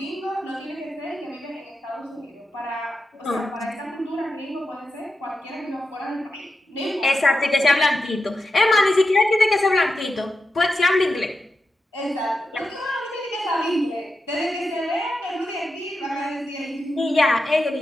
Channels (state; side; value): normal; both; correlation 0.89